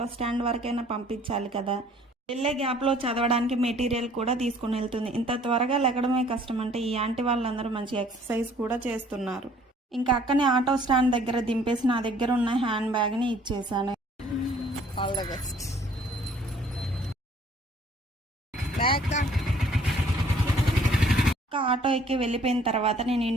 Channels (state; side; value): normal; both; correlation 0.57